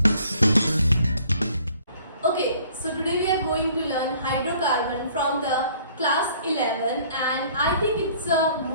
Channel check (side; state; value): both; inverted; correlation -0.57